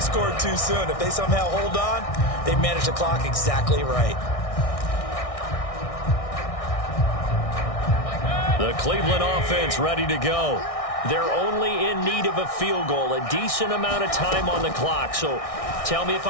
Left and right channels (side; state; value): right; late; 1.6 ms